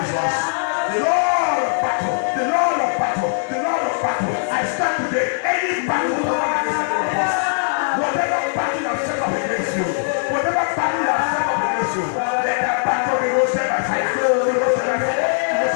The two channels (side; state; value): right; silent; digital silence